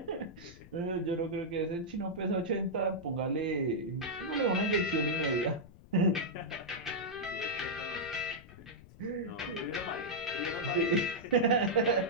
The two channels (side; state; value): left; noise; rumble, 20 dB below the sound